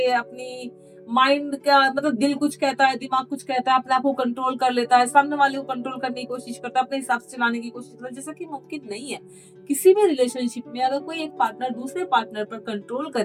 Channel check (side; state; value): both; identical; correlation 1.00